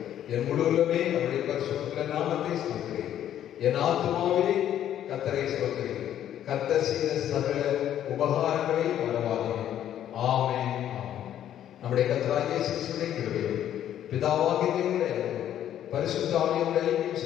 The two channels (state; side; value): quieter; right; 11.0 dB